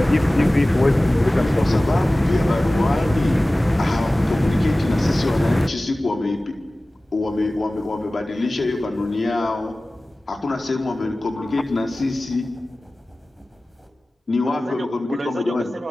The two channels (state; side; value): normal; both; correlation 0.97